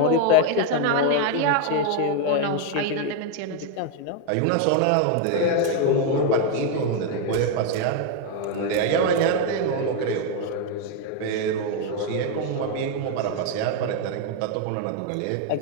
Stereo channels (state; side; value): different; both; correlation 0.01